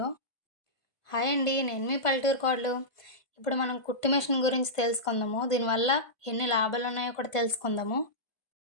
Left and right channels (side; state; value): right; late; 1.5 ms